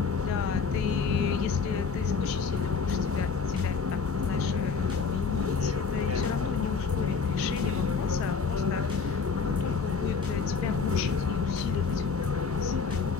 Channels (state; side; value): quieter; right; 5.2 dB